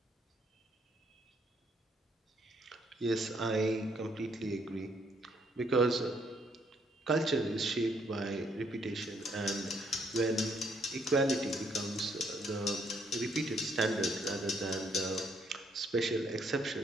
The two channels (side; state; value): both; normal; correlation 0.70